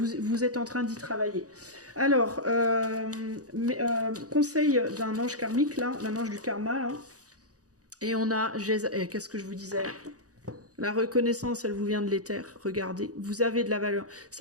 êtes en train d'y travailler. Alors, conseil d'un ange karmique, là, d'un ange du karma, là. Et on a, qu'est-ce que je vous disais? La reconnaissance, elle vous vient de l'éther. Regardez, vous avez de la valeur.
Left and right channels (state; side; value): late; left; 0.67 ms